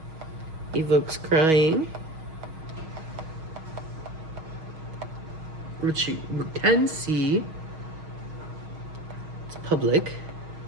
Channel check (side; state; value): left; late; 6.3 ms